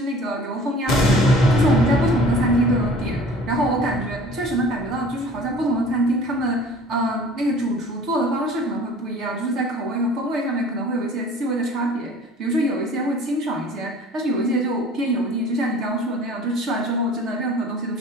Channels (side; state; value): both; normal; correlation 0.47